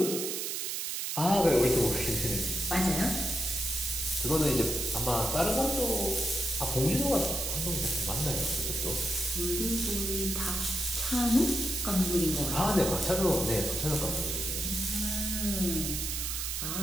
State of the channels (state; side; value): noise; right; hiss, 2 dB below the sound